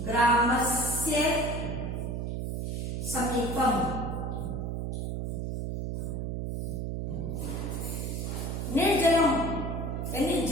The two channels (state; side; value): noise; right; hum, 2 dB below the sound